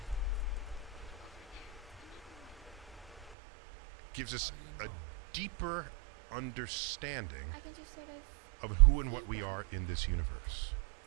gives us a deeper understanding of who and what we are in this universe.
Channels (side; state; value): left; drops out; at 3.3 s